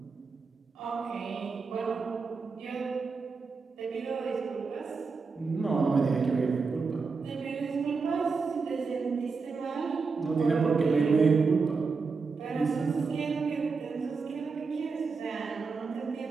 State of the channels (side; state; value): left; quieter; 4.7 dB